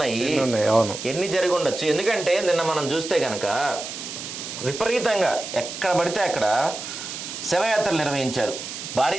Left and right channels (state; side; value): noise; right; hiss, 8 dB below the sound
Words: ఎన్ని జరిగి ఉండొచ్చు. ఎందుకంటే నిన్న మనం చూస్తే కనుక విపరీతంగా ఎక్కడ పడితే అక్కడ శవయాత్రలు నిర్వహించారు